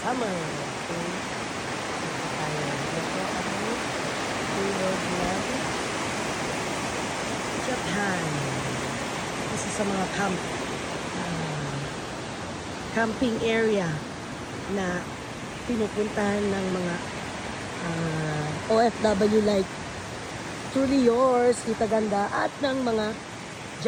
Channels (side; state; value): both; identical; correlation 1.00